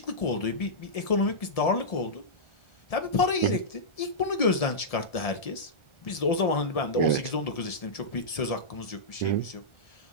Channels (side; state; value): right; late; 1.7 ms